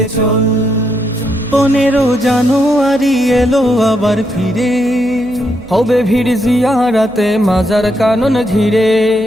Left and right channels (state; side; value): noise; right; hum, 23 dB below the sound